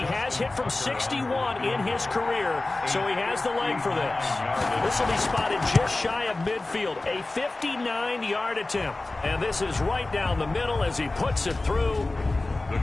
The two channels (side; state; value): right; quieter; 3.0 dB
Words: hit from 61 in his career, so he has the leg for this. This will be spotted just shy of midfield, a 59-yard attempt. And this is right down the middle as he puts it through. The